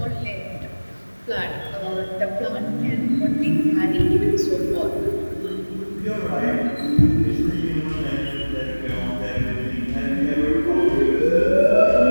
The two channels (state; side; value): inverted; both; correlation -1.00